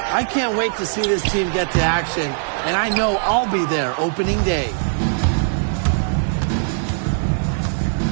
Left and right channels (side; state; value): left; silent; 61 dB below the other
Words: I can't wait to see this team get to action, and I know I'll be there opening day.